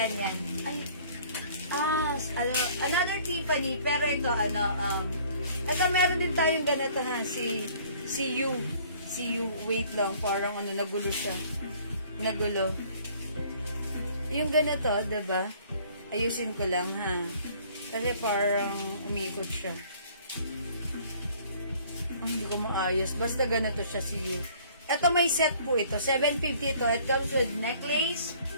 yan. Ay. Another Tiffany, pero ito, ito meron din tayong ganito ha. Si You. Wait lang. Parang nagulo siya. Nagulo. Yung ganito, diba? Ayusin ko lang, ha? Kasi parang umiikot siya. Hindi ko maayos. Basta ganito siya si You. Ito may set po ito. 750 ito. It comes with necklace,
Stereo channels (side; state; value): both; inverted; correlation -0.55